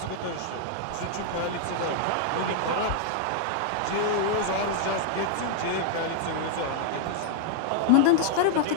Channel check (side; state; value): both; different; correlation -0.01